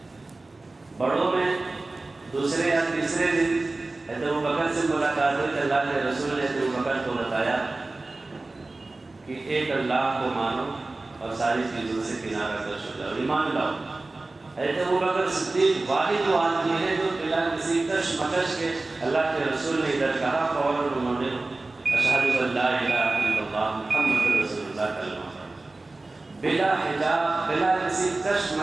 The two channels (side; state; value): left; quieter; 3.2 dB